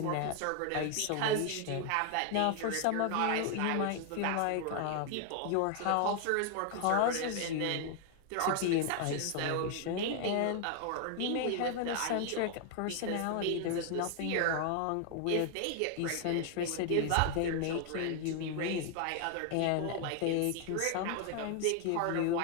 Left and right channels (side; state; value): both; different; correlation 0.00